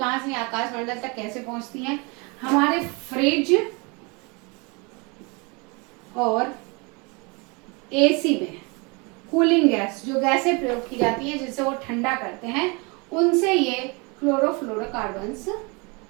से, आकाशमंडल तक कैसे पहुंचती हैं? हमारे फ्रिज और AC में कूलिंग गैस, जो गैसें प्रयोग की जाती हैं जिससे वो ठंडा करते हैं, उनसे ये क्लोरोफ्लोरोकार्बन्स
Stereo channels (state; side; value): quieter; left; 29.6 dB